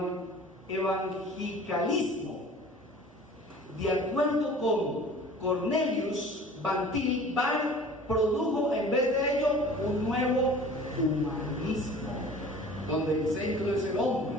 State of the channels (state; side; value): normal; both; correlation 0.44